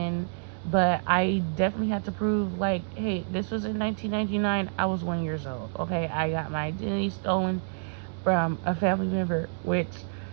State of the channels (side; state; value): left; silent; 59 dB below the other